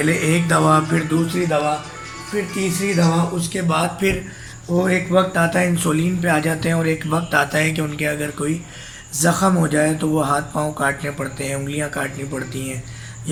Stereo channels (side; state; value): both; identical; correlation 1.00